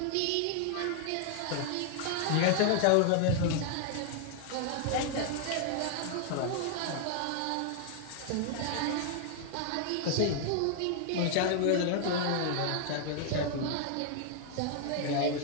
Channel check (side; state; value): both; different; correlation 0.00